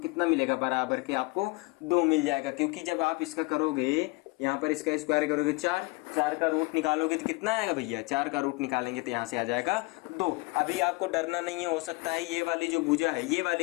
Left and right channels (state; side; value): quieter; right; 25.2 dB